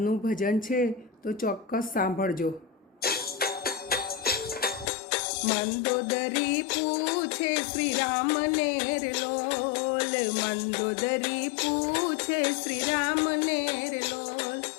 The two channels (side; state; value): right; drops out; at 4.9 s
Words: ભજન છે તો ચોક્કસ સાંભળજો. મંદોદરી પૂછે શ્રી રામને રે લોલ, મંદોદરી પૂછે શ્રી રામને રે લોલ,